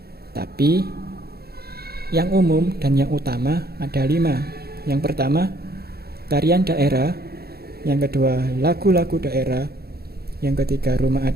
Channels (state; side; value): late; left; 0.46 ms